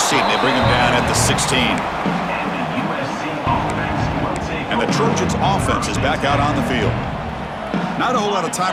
team. They bring him down at the 16. And the Trojans offense is back out on the field. Not a whole lot of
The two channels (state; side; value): identical; both; correlation 1.00